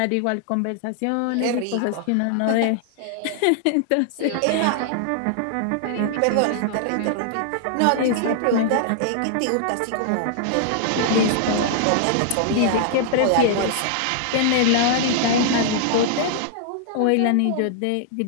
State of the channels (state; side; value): different; both; correlation -0.01